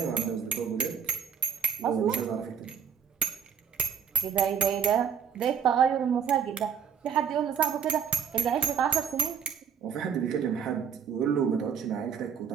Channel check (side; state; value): left; quieter; 7.4 dB